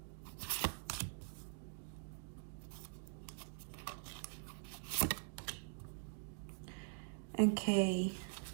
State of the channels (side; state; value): left; silent; digital silence